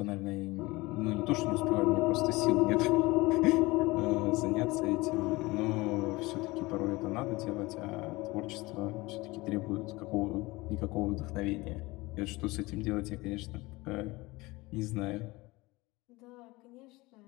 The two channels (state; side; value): quieter; right; 21.9 dB